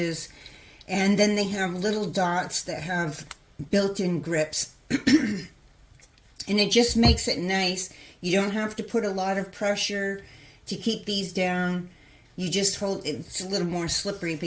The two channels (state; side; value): identical; both; correlation 1.00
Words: And then they have little dots that have built-in grips. And it just makes it nice. You don't have to put a lot of pressure to keep these down. You just hold, it's a little more slippery